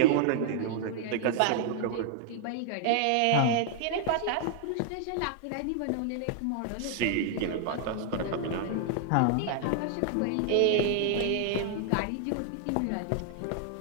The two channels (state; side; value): different; both; correlation -0.01